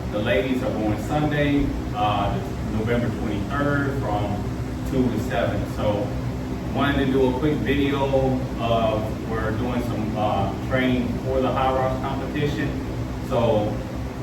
The ladies are going Sunday, November 23rd from 2 to 7. So wanted to do a quick video of we're doing some training for the HYROX competition. So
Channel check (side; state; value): both; identical; correlation 1.00